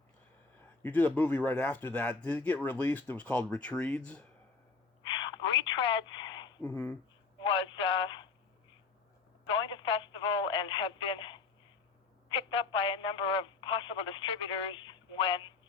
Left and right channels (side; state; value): right; quieter; 4.4 dB